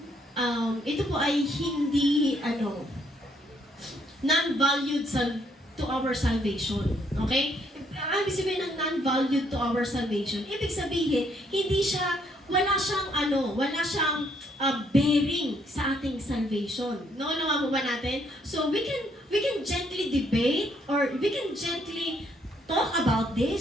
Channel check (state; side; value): normal; both; correlation 0.69